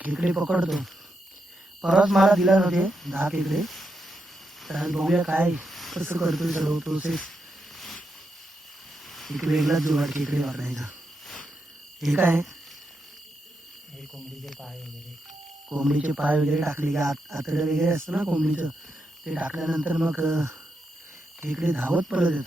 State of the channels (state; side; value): normal; both; correlation 0.84